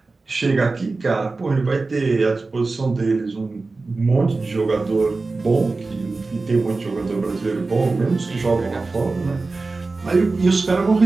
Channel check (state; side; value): quieter; left; 3.7 dB